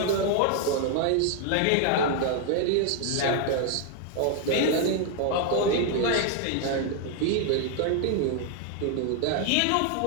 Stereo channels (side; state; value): both; different; correlation 0.00